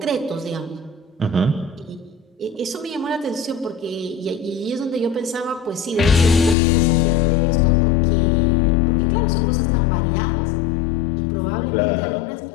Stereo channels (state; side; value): drops out; right; at 6.6 s